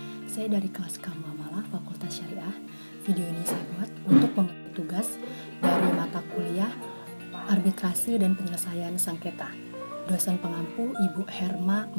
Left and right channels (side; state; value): both; inverted; correlation -1.00